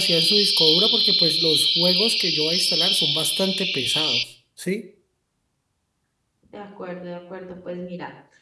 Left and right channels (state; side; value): identical; both; correlation 1.00